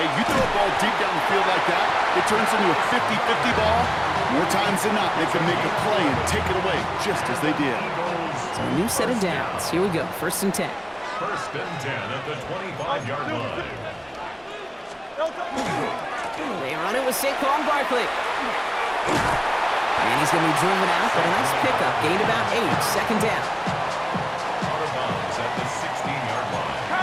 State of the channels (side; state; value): both; identical; correlation 1.00